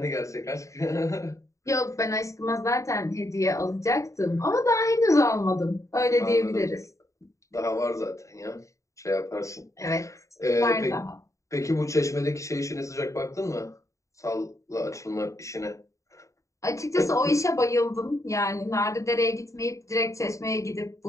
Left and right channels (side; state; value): right; late; 0.15 ms